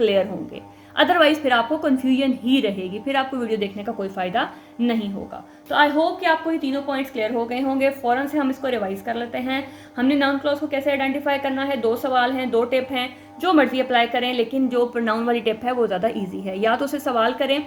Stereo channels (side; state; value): both; identical; correlation 1.00